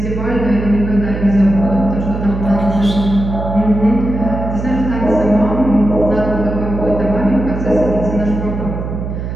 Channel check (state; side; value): noise; right; hum, 5 dB below the sound